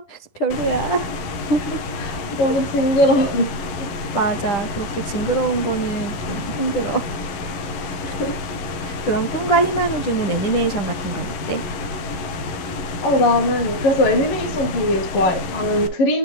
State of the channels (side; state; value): right; late; 11 ms